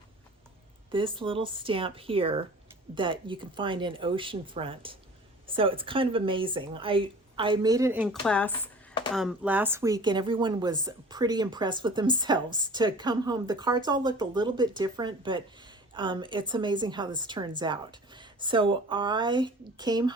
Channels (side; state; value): both; normal; correlation 0.43